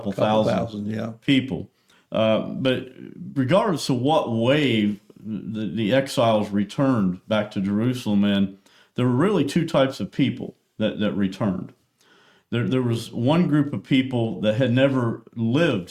thousand people. But regardless of what wave the exiles returned back to Jerusalem in, there were really two types of people that returned. There was one group of people that had never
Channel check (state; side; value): identical; both; correlation 1.00